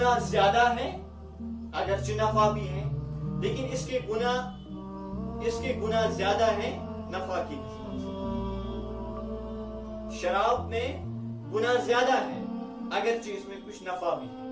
زیادہ ہے اگرچہ نفع بھی ہے, لیکن اس کے گناہ زیادہ ہیں نفع کی نسبت سے. شراب میں گناہ زیادہ ہے اگرچہ اس میں کچھ نفع بھی ہے,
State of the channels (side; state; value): both; identical; correlation 1.00